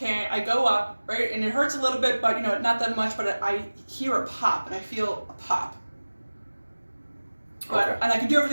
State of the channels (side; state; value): both; inverted; correlation -1.00